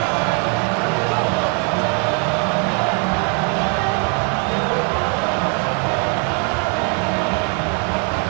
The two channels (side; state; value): left; quieter; 34.1 dB